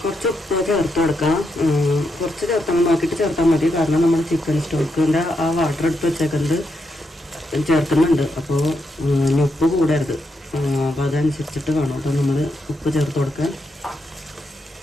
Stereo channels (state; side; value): normal; both; correlation 0.82